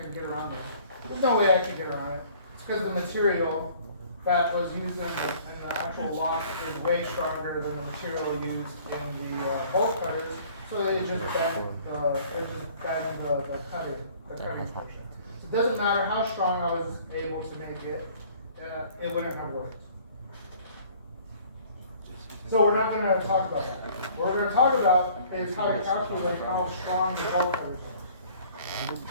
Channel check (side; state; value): both; inverted; correlation -0.54